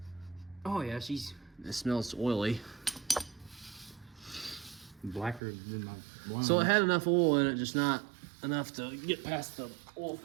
Oh yeah, she's It smells oily. blacker than my blonde. So it had enough oil in it, just not enough to get past the oil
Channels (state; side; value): drops out; left; at 5.4 s